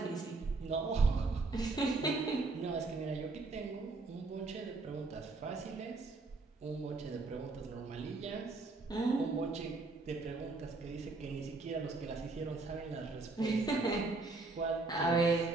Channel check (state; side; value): quieter; left; 3.6 dB